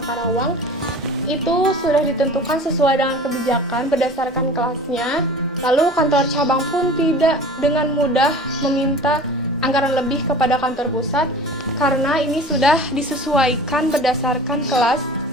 Karawang itu sudah ditentukan sesuai dengan kebijakan berdasarkan kelasnya. Lalu kantor cabang pun tidak dengan mudah meminta anggaran lebih kepada kantor pusat karena ini sudah disesuaikan berdasarkan kelas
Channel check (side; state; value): both; normal; correlation 0.40